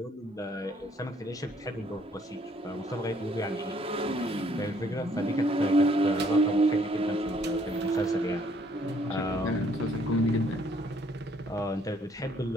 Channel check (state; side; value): normal; both; correlation 0.65